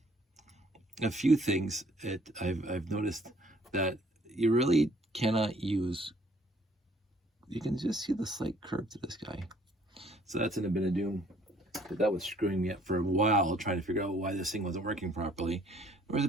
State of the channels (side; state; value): both; normal; correlation 0.60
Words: few things I've noticed that you really cannot use. You can just see the slight curve to this guy. So that's in a bit of doom. But that was screwing me up for a while, trying to figure out why this thing wasn't working properly. There was a